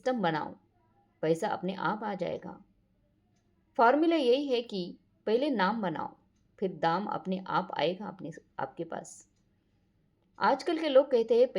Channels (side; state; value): both; identical; correlation 1.00